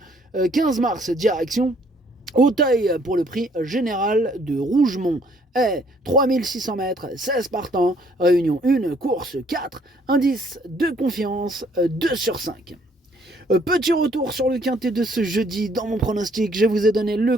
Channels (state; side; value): normal; both; correlation 0.64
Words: 15 mars, direction Auteuil pour le prix général de Rougemont. Et 3600 mètres, 16 partants, réunion 1, course 4, indice de confiance 2 sur 5. Petit retour sur le quintet de ce jeudi. Dans mon pronostic, je vous ai donné le